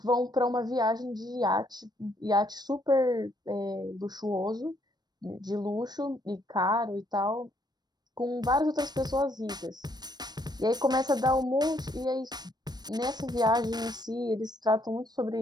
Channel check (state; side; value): late; left; 0.20 ms